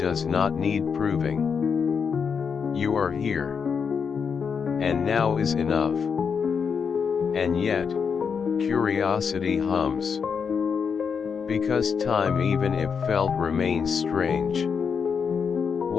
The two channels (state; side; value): quieter; right; 6.3 dB